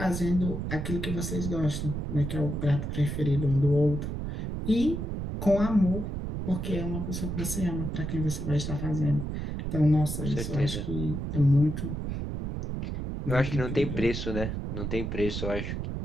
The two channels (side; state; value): right; noise; rumble, 4 dB below the sound